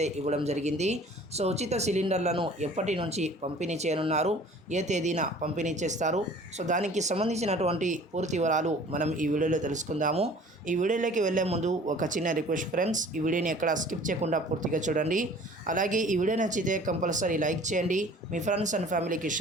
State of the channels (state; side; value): normal; both; correlation 0.49